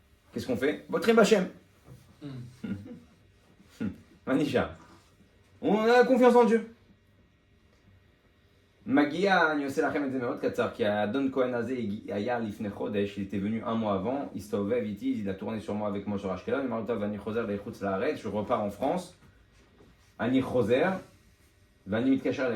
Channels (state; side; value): identical; both; correlation 1.00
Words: Qu'est-ce qu'on fait? בוטחים בשם. מה נשאר? On a confiance en Dieu. מגיע, אני עושה לכם את זה מאוד קצר, כי האדון כהן הזה היה לפני חודש, il était venu 1 mois avant, il הסתובב איתי, il a tourné sur moi avec moi sur אשקלון, אני אמר לו, טוב, אני חוזר לחוץ לארץ, je repars en France, אני חוזר, Vani mitkacher